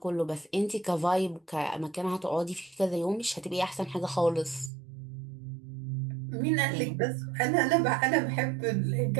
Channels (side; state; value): left; drops out; at 4.7 s